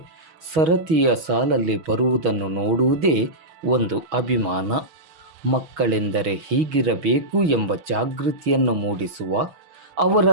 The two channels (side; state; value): left; late; 6.2 ms